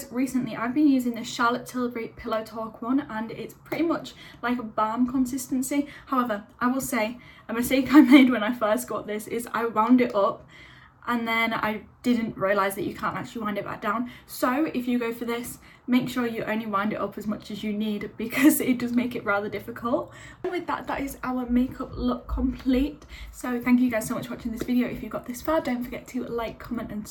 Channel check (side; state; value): both; identical; correlation 1.00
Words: recently I've been using the Charlotte Tilbury Pillow Talk one, and it's pretty much like a balm consistency. However, I will say a mistake I made when I first got this is I wound it up and then I didn't realise that you can't actually wind it back down. So if you go for this, make sure you only wind it up as much as you need, because it does make it rather difficult. And with that, that is our makeup look complete. So thank you guys so much for watching this video. If you got this far, don't forget to like, comment and